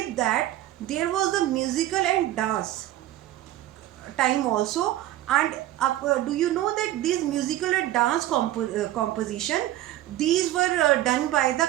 that there was the musical and dance time also. And do you know that these musical and dance composition, these were done by the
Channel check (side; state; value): left; quieter; 14.3 dB